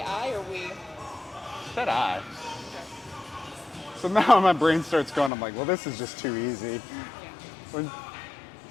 I or we? said I. So now my brain starts going, I'm like, well, this is just too easy. So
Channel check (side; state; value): right; drops out; at 5.3 s